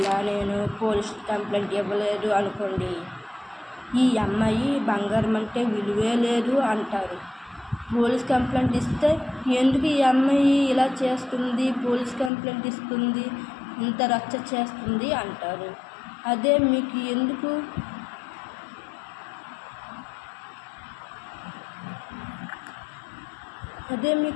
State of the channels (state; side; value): drops out; right; at 12.3 s